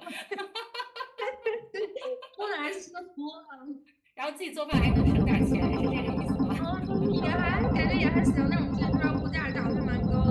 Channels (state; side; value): identical; both; correlation 1.00